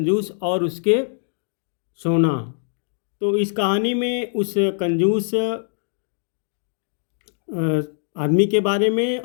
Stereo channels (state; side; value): silent; right; digital silence